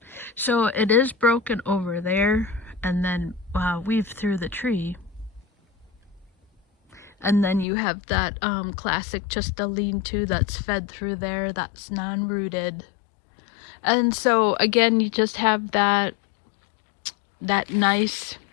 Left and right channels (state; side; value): drops out; right; at 7.7 s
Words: So it is broken over there and then weaved through the tree. And then you have that classic, just a lean-to that's fed through there, that's non-rooted. And so again, you just have that nice